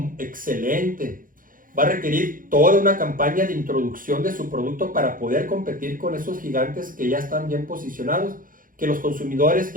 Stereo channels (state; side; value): late; left; 0.40 ms